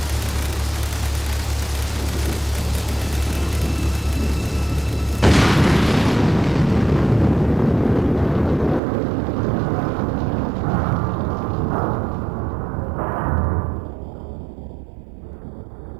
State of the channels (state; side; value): drops out; left; at 8.8 s